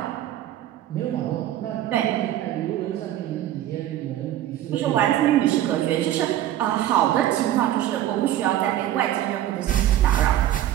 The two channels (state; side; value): quieter; left; 12.6 dB